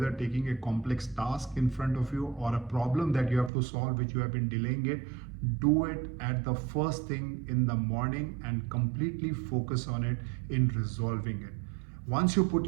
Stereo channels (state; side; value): drops out; left; at 3.5 s